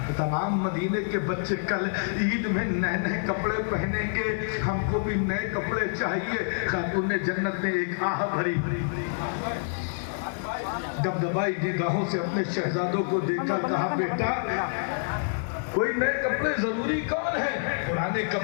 تمام مدینے کے بچے کل عید میں نئے نئے کپڑے پہنیں گے، ہم کو بھی نئے کپڑے چاہیے۔ خاتون جنت نے ایک آہ بھری، دبدبائی نگاہوں سے اپنے شہزادوں کو دیکھا، کہا بیٹا کوئی نئے کپڑے ضروری کون ہے؟ پرانے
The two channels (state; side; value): silent; right; digital silence